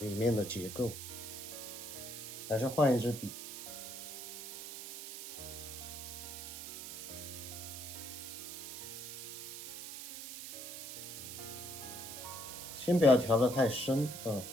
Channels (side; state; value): right; noise; hiss, 8 dB below the sound